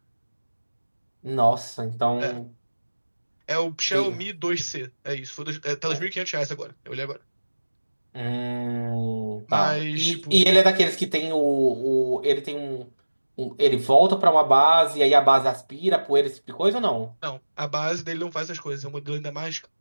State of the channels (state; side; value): inverted; both; correlation -1.00